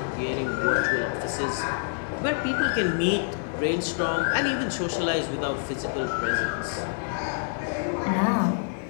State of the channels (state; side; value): silent; right; 55 dB below the other